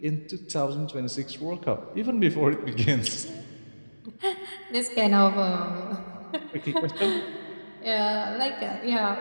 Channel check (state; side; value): inverted; both; correlation -1.00